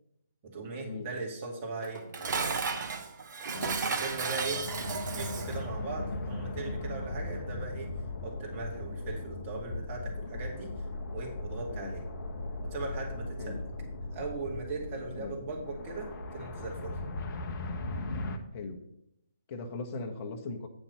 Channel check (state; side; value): inverted; both; correlation -0.56